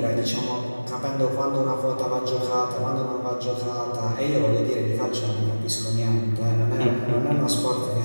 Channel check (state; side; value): inverted; both; correlation -1.00